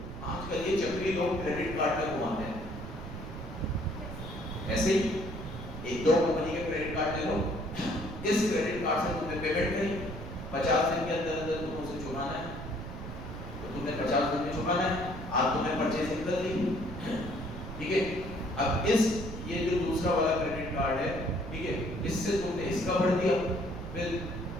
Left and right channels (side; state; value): right; noise; rumble, 9 dB below the sound